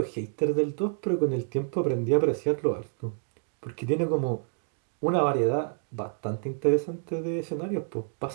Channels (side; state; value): left; silent; 59 dB below the other